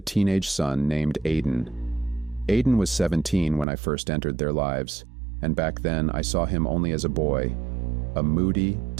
teenage son named Aiden. Aiden was 17 when I first entered their lives, and back then I saw him only as a boy, a moody,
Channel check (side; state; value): left; drops out; at 3.7 s